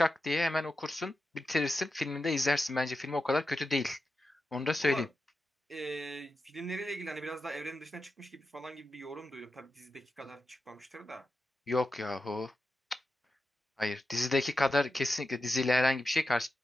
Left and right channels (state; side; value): normal; both; correlation 0.90